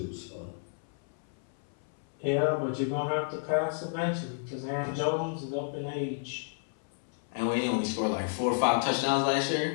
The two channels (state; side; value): silent; right; 57 dB below the other